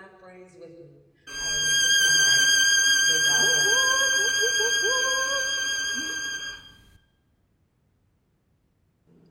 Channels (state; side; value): identical; both; correlation 1.00